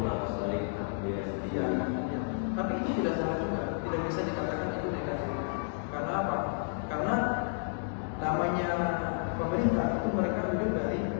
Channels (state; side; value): silent; right; digital silence